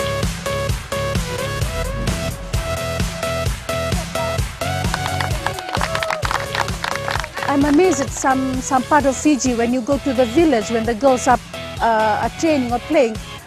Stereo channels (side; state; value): both; identical; correlation 1.00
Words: I'm amazed at some part of Fiji when you go to the village, when the girls are training or playing,